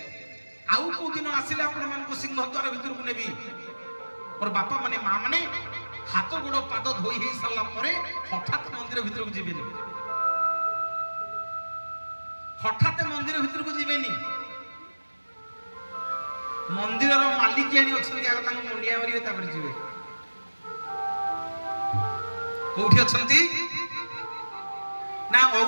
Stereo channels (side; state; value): both; inverted; correlation -1.00